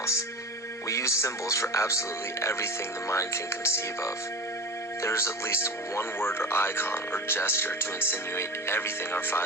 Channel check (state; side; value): normal; both; correlation 0.31